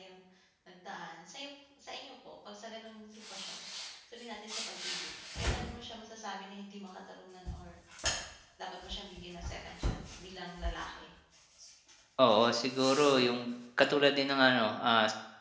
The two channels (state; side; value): identical; both; correlation 1.00